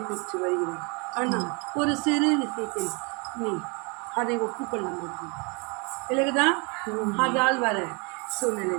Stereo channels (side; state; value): left; quieter; 31.3 dB